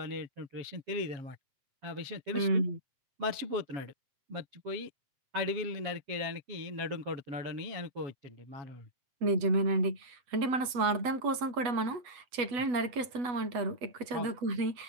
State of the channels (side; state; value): left; late; 8.1 ms